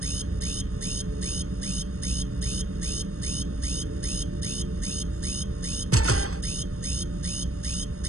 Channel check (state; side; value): late; left; 0.64 ms